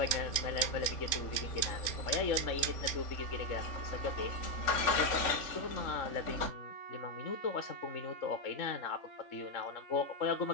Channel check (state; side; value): late; right; 3.6 ms